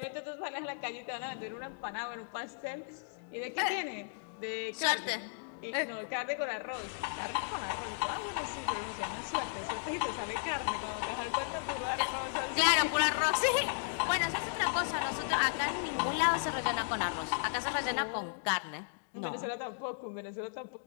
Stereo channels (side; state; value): right; silent; digital silence